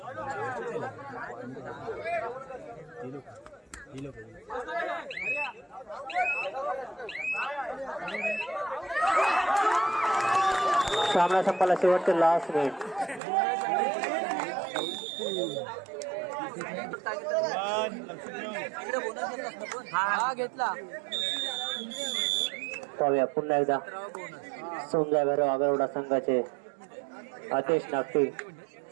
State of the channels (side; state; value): left; drops out; at 13.2 s